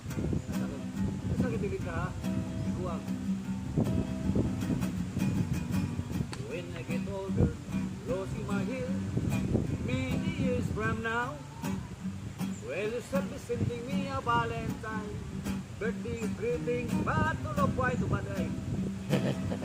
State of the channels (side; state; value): both; identical; correlation 1.00